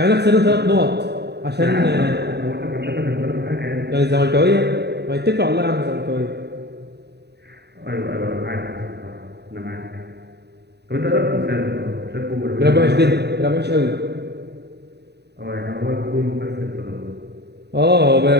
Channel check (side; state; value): left; late; 0.48 ms